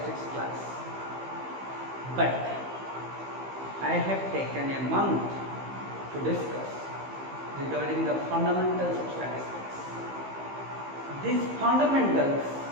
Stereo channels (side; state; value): left; late; 15 ms